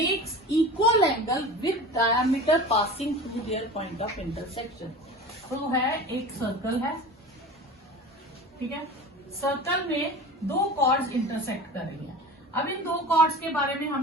equal angle with diameter passing through their point of intersection. तो है एक circle है, ठीक है, सर्कल में दो कॉर्ड्स इंटरसेक्ट कर रही है. अब इन दो कॉर्ड्स के बारे में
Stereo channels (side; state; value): both; normal; correlation 0.34